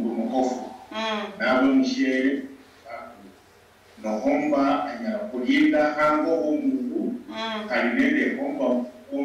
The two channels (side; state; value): both; identical; correlation 1.00